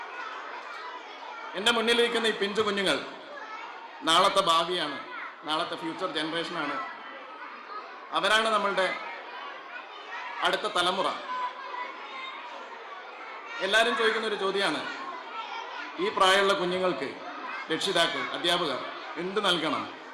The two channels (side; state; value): both; identical; correlation 1.00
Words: എൻ്റെ മുന്നിലിരിക്കുന്ന ഈ പിഞ്ചു കുഞ്ഞുങ്ങൾ നാളത്തെ ഭാവിയാണ്, നാളത്തെ ഫ്യൂച്ചർ ജനറേഷനാണ്. അവരാണ് നമ്മളുടെ അടുത്ത തലമുറ. എല്ലാവരും ചോദിക്കുന്ന ഒരു ചോദ്യമാണ്, ഈ പ്രായമുള്ള കുഞ്ഞുങ്ങൾക്ക് രക്ഷിതാക്കൾ, അധ്യാപകർ എന്ത് നൽകണം,